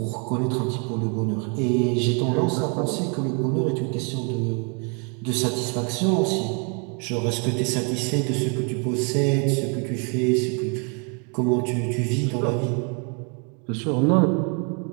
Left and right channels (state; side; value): quieter; left; 37.1 dB